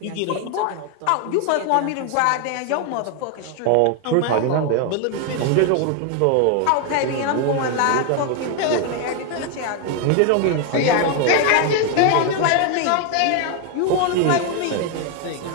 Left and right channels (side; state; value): both; different; correlation 0.01